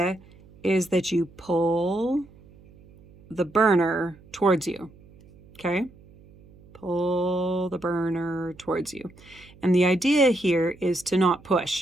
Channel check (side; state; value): right; noise; hum, 25 dB below the sound